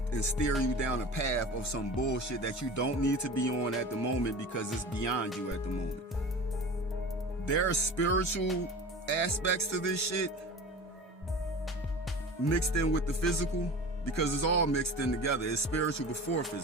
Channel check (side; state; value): both; normal; correlation 0.35